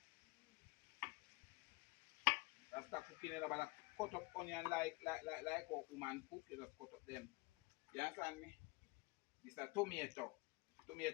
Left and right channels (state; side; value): quieter; right; 25.4 dB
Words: Rasta cooking you know, but I cut up onion like how woman cook, you just cut up them. You understand me? This is a tomato.